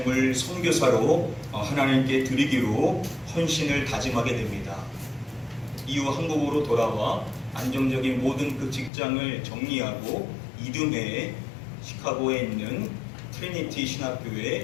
선교사로 하나님께 드리기로 헌신을 다짐하게 됩니다. 이후 한국으로 돌아와 안정적인 모든 그 직장을 정리하고 이듬해 시카고에 있는 트리니티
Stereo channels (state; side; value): drops out; right; at 8.9 s